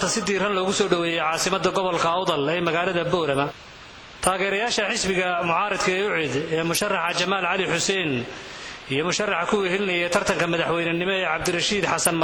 si diiran loogu soo dhaweeyay caasimadda gobolka Awdal ee magaalada Boorama. taageerayaasha xisbiga mucaaradka ee UCID ee musharaxa Jamaal Cali Xuseen iyo musharaxa ku wehelinaya tartanka madaxweynenimo ee Cabdirashiid Xasan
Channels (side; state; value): both; identical; correlation 1.00